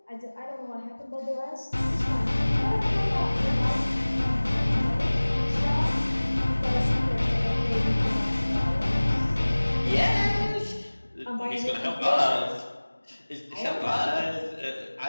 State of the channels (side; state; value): both; inverted; correlation -1.00